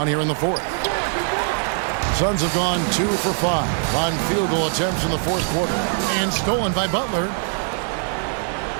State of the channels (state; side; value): silent; left; 57 dB below the other